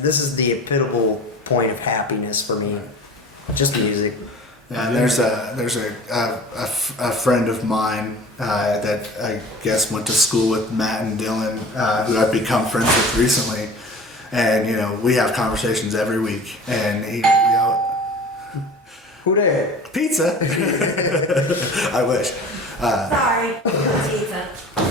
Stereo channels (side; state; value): both; normal; correlation 0.40